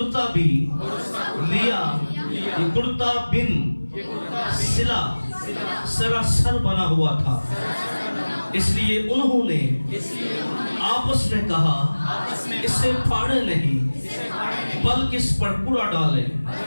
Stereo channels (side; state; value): both; inverted; correlation -1.00